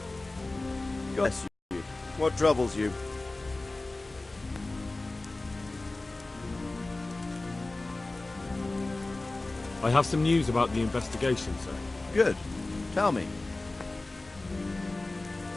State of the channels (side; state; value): right; quieter; 3.0 dB